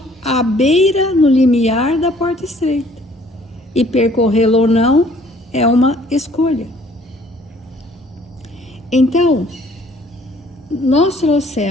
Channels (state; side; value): normal; both; correlation 0.58